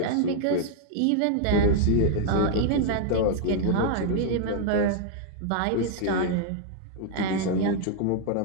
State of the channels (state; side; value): different; both; correlation -0.01